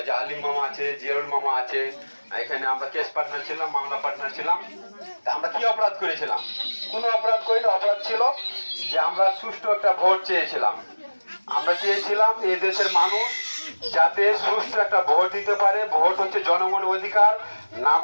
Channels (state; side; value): inverted; both; correlation -1.00